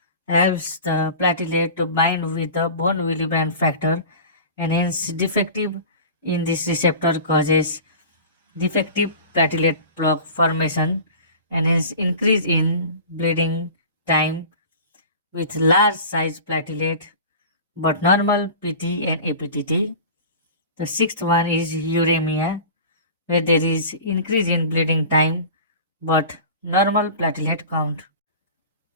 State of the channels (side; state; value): both; inverted; correlation -0.37